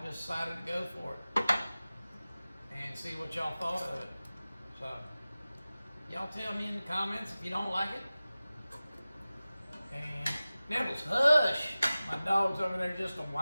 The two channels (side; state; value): both; inverted; correlation -0.97